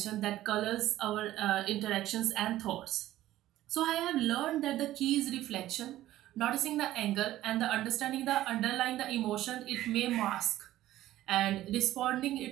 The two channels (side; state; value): left; quieter; 14.5 dB